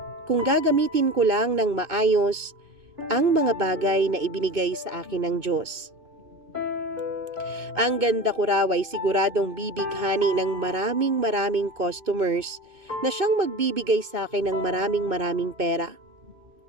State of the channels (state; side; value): late; left; 2.5 ms